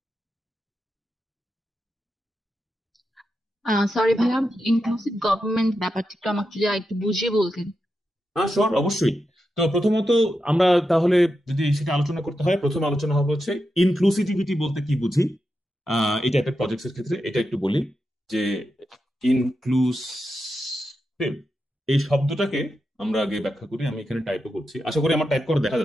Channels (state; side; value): normal; both; correlation 0.88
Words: সরি ভাইয়া, ইনক্লুসিভ গভর্নমেন্ট ব্যাপারটা একটু আমাকে যদি আরেকটু বুঝিয়ে বলতেন। হ্যাঁ শিওর, অবশ্যই। তো প্রথমত আমরা তাহলে যদি সেটা আলোচনা করতে হয়, প্রথম আলোচনা হবে হচ্ছে ইনক্লুসিভিটি বলতে কি বুঝি। এই টাইপের প্রজেক্টস এর ক্ষেত্রে এটা একটু বলি যে ইনক্লুসিভ এই শব্দটাকে আমরা আগে ব্যাখ্যা করি। আমি এখানে টাইপও করছি, আশা করি আমার টাইপ করে দেখা